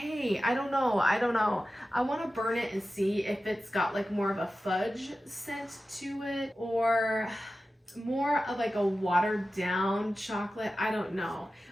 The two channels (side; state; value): both; normal; correlation 0.94